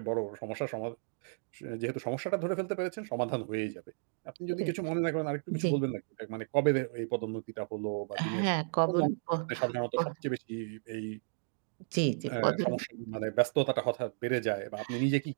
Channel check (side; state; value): left; silent; digital silence